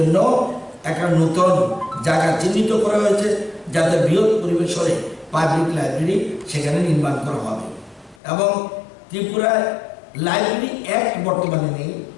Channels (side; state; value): right; drops out; at 8.2 s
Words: একটা নতুন জায়গা চিহ্নিত করা হয়েছে যাতে বৃহৎ পরিবেশনে পাবলিক লাইব্রেরি সেখানে নির্মাণ করা হবে। এবং ত্রিপুরায় লাইব্রেরি অ্যাক্ট বর্তমানে নেই,